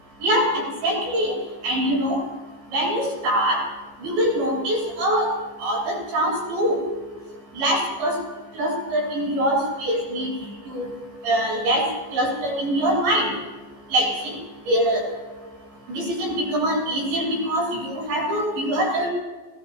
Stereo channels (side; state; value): left; late; 14 ms